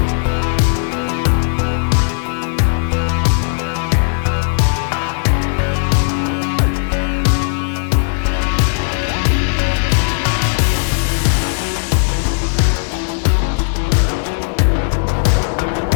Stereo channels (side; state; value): right; silent; digital silence